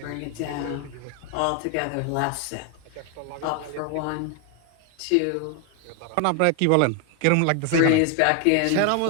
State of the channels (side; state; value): both; different; correlation 0.01